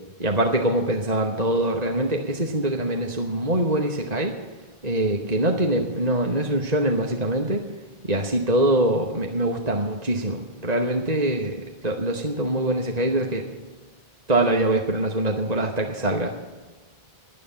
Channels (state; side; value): late; left; 1.9 ms